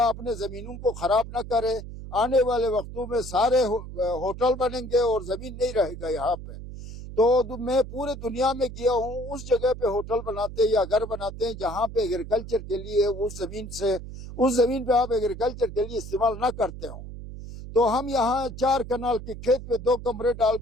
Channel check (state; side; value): noise; right; hum, 11 dB below the sound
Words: اپنے زمینوں کو خراب نہ کرے. آنے والے وقتوں میں سارے ہوٹل بنیں گے اور زمین نہیں رہے گا یہاں پہ. تو میں پورے دنیا میں گیا ہوں، اس جگہ پہ ہوٹل بناتے یا گھر بناتے ہیں جہاں پہ ایگریکلچر کے لیے اس زمین پہ آپ ایگریکلچر کے لیے استعمال نہ کرتے ہوں. تو ہم یہاں 4 کنال کے کھیت پہ 2 کمرے ڈال